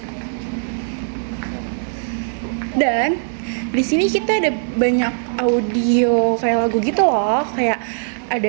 Dan di sini kita ada banyak audio kayak lagu gitu loh, kayak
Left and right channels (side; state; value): left; silent; 63 dB below the other